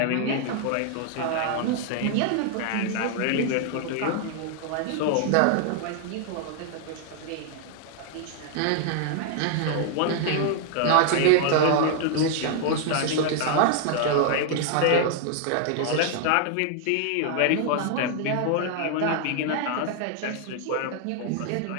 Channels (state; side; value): different; both; correlation 0.00